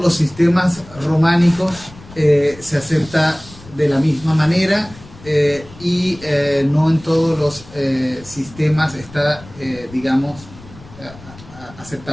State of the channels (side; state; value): left; noise; rumble, 20 dB below the sound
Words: los sistemas románicos se acepta de la misma manera y no en todos los sistemas está, digamos,